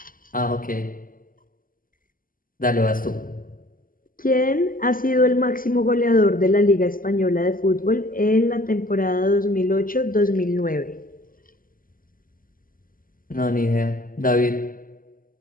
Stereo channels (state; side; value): late; right; 0.41 ms